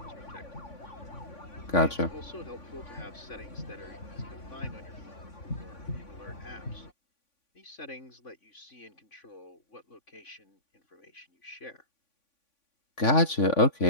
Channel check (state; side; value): late; right; 3.5 ms